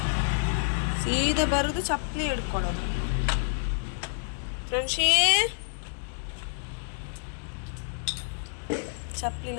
ಸೀದಾ ಬರೋದು ಚಪ್ಪಲಿ ಹಿಡ್ಕೊಳ್ಳೋದು. ಫ್ರೆಂಡ್ಶಿ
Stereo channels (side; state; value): right; silent; 59 dB below the other